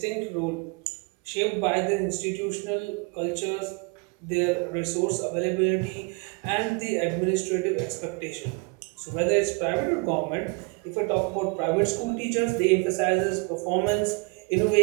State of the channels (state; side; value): quieter; left; 30.2 dB